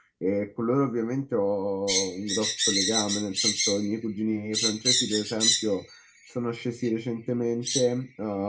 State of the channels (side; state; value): both; identical; correlation 1.00